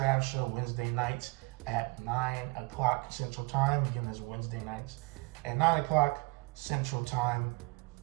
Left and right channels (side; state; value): left; quieter; 25.9 dB